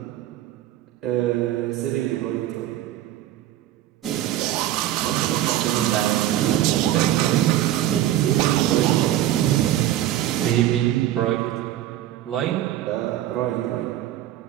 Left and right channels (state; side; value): quieter; left; 13.0 dB